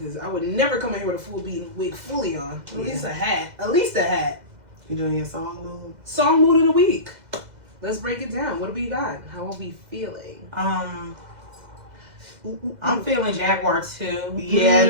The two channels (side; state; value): left; late; 2.0 ms